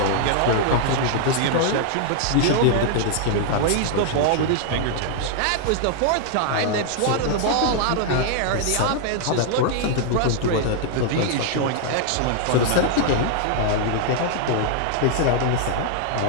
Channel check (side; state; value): both; different; correlation 0.00